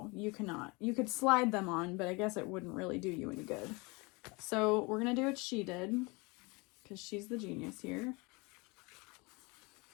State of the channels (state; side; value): quieter; right; 27.0 dB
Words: you cannot. You could slide them on, but I guess it wouldn't really do you any good. So we're gonna do what she did, because she's the genius here.